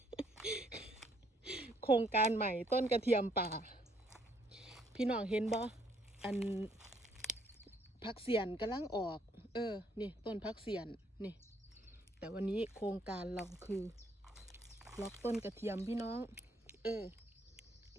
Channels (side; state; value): both; normal; correlation 0.67